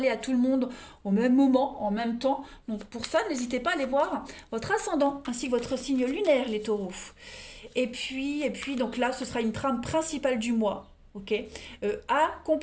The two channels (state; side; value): identical; both; correlation 1.00